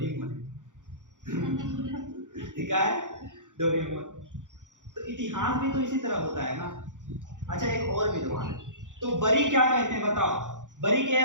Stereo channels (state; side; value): late; left; 0.87 ms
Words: ठीक है, डोरेमोन। तो इतिहास भी तो इसी तरह होता है ना। अच्छा एक और विद्वान है, तो बरी क्या कहते हैं बताओ? बरी के